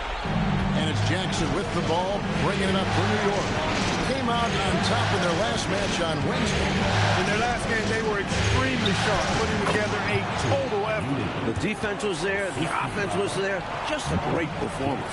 And it's Jackson with the ball, bringing it up for New York. Came out on top in their last match on Wednesday. In their last game, they were extremely sharp, putting together a total effort. The defense was there. The offense was there. Just a great performance.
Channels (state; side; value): identical; both; correlation 1.00